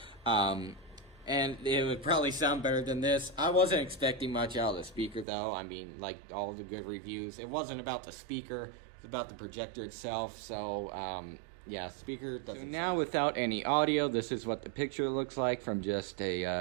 And it would probably sound better than this. I wasn't expecting much out of the speaker though. I mean, like all the good reviews, it wasn't about the speaker, it's about the projector itself. So yeah, speaker doesn't. So now without any audio, this is what the picture looks like from just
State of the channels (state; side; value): drops out; left; at 5.2 s